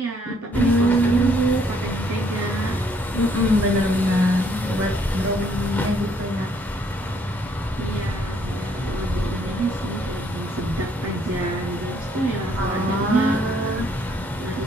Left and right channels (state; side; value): normal; both; correlation 0.67